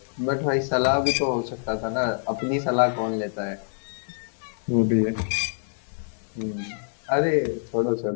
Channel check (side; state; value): right; silent; 60 dB below the other